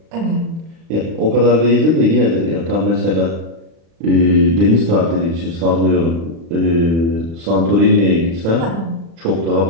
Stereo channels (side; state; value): left; late; 36 ms